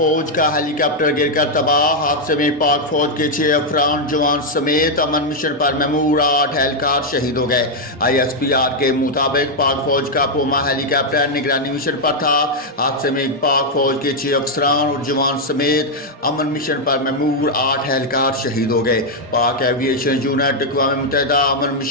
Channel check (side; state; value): both; normal; correlation -0.01